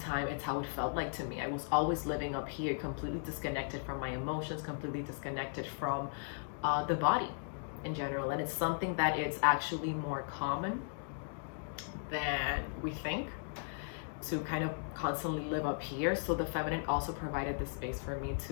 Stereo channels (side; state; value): right; silent; digital silence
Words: time, it's how it felt like to me. I was always living up here, completely disconnected from my emotions, completely disconnected from the body in general. And it's something that it's actually more common than we think, to kind of constantly live up here. So the feminine also provided the space for me